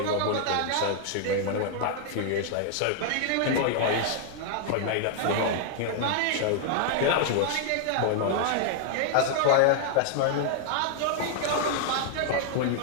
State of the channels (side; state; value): both; different; correlation -0.01